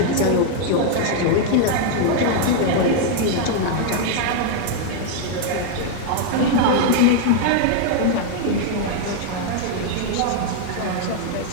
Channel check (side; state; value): both; different; correlation 0.00